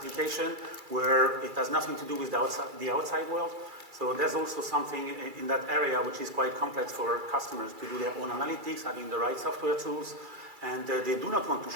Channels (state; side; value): late; left; 2.3 ms